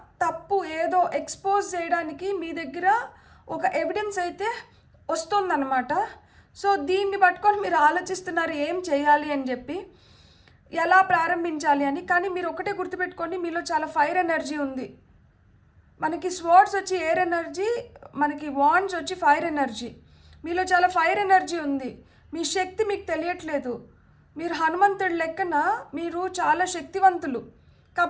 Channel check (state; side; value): identical; both; correlation 1.00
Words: తప్పు ఏదో ఎక్స్పోజ్ చేయడానికి మీ దగ్గర ఒక ఎవిడెన్స్ అయితే వస్తుందన్నమాట. సో దీన్ని పట్టుకొని మీరు ఆలోచిస్తున్నారు ఏం చేయాలి అని చెప్పి. ఎలా ప్రారంభించాలి అని. కానీ మీరు ఒకటే గుర్తుపెట్టుకోండి, మీలో చాలా ఫైర్ ఎనర్జీ ఉంది. మనకి స్వర్డ్స్ వచ్చి ఎయిర్ ఎనర్జీ, మనకి వాండ్స్ వచ్చి ఫైర్ ఎనర్జీ. మీలో చాలా ఫైర్ ఎనర్జీ ఉంది. మీ శక్తి మీకు తెలియట్లేదు. మీరు హనుమంతుడి లెక్కన మీరు చాలా శక్తివంతులు.